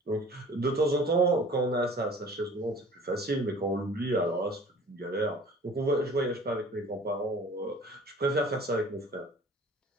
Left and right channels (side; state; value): both; normal; correlation 0.48